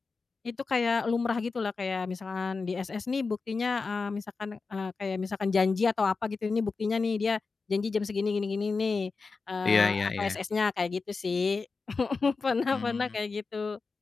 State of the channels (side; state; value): right; quieter; 4.4 dB